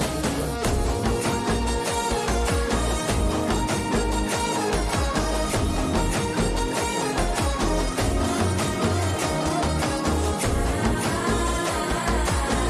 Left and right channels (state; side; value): identical; both; correlation 1.00